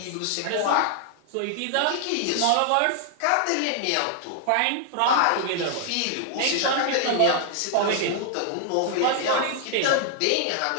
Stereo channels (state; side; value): different; both; correlation 0.00